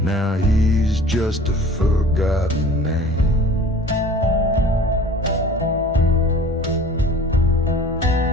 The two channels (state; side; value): normal; both; correlation 0.45